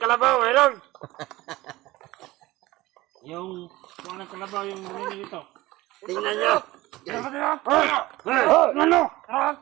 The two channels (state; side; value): quieter; left; 18.6 dB